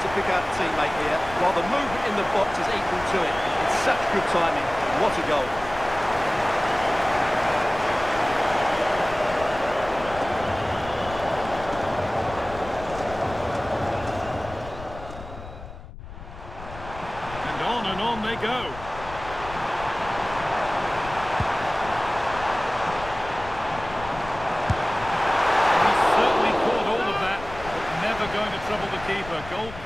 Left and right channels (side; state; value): left; noise; rumble, 14 dB below the sound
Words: pick out a teammate here, while the movement in the box is equal to it. It's such good timing. What a goal. On they go. He's certainly caught all of that, but never going to trouble the keeper. Goal